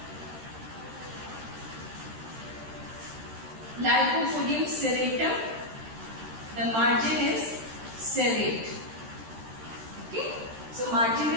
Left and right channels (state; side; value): late; left; 13 ms